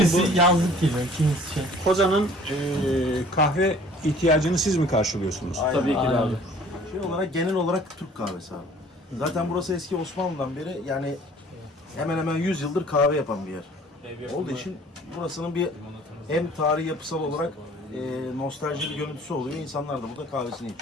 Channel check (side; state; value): both; normal; correlation 0.52